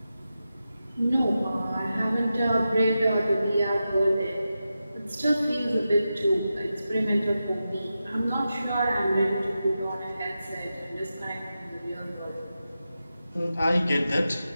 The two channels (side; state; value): both; inverted; correlation -0.91